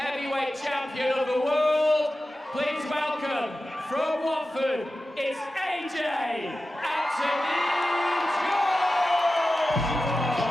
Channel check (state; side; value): normal; both; correlation 0.94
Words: champion of the world. Please welcome, from Watford, it's AJ Anthony